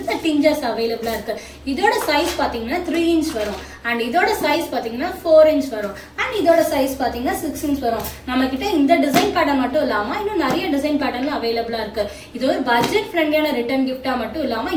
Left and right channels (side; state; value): both; identical; correlation 1.00